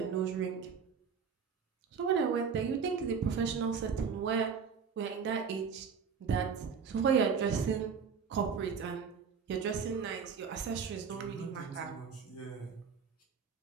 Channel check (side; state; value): left; quieter; 6.3 dB